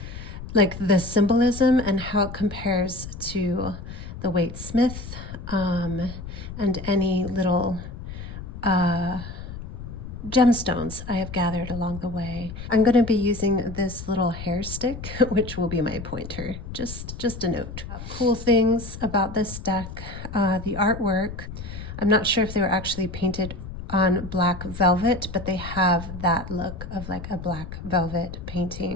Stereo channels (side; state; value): left; noise; rumble, 10 dB below the sound